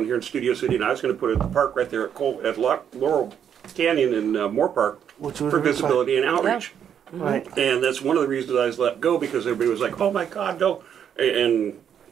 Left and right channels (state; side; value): quieter; left; 8.6 dB